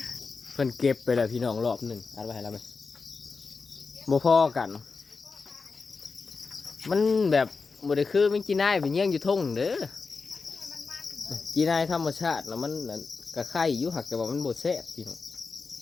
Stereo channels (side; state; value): right; quieter; 4.6 dB